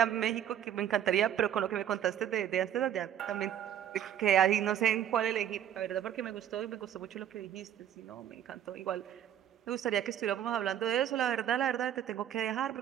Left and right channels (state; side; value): quieter; left; 10.3 dB